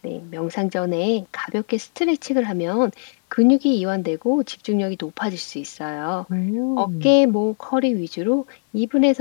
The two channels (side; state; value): right; silent; 58 dB below the other